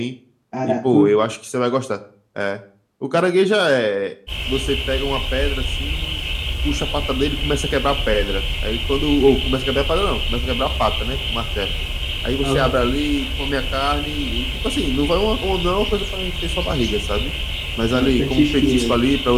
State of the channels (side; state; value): both; identical; correlation 1.00